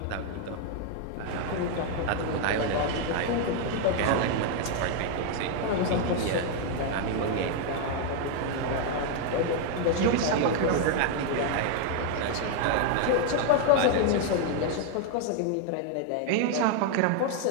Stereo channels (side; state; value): both; different; correlation 0.00